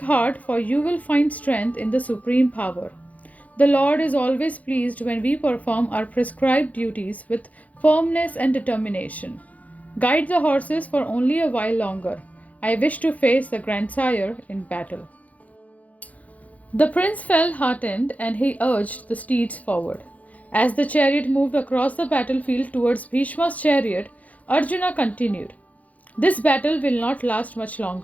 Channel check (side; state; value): right; late; 0.072 ms